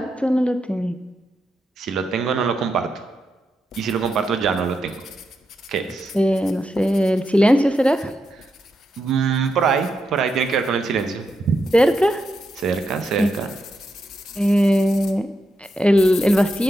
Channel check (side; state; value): both; normal; correlation 0.85